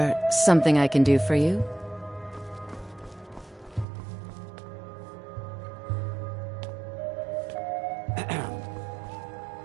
something I can do for you?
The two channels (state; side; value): drops out; left; at 3.9 s